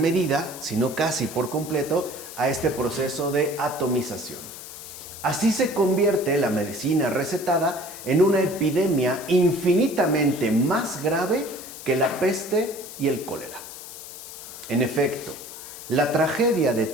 si no casi por completo, a este proceso de atomización. Así se convierte la medicina recetada en una epidemia infinitamente más grave que la peste y el cólera. En efecto, la tragedia de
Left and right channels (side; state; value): left; noise; hiss, 13 dB below the sound